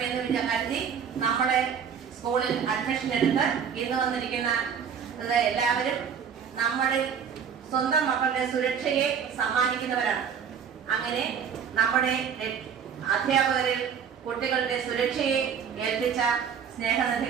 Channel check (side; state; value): left; quieter; 7.3 dB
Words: കരുതി നമ്മുടെ സ്കൂളിൽ അഡ്മിഷൻ എടുത്ത് ഇന്ന് വന്നിരിക്കുന്ന എല്ലാവരും നമ്മുടെ സ്വന്തം മക്കളുടെ സുരക്ഷയെ സമ്മാനിക്കുന്നവരാണ്. അങ്ങനെ നമ്മുടെ അധ്യാപകരിൽ കുട്ടികളുടെ സുരക്ഷയെ ഏൽപ്പിച്ച